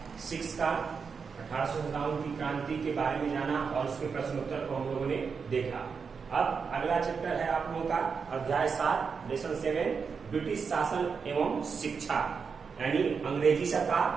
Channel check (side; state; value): left; quieter; 5.7 dB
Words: 6 का 1857 की क्रांति के बारे में जाना और उसके प्रश्नोत्तर को हम लोगों ने देखा। अब अगला चैप्टर है आप लोगों का अध्याय 7 लेसन 7 ब्रिटिश शासन एवं शिक्षा, यानी अंग्रेजी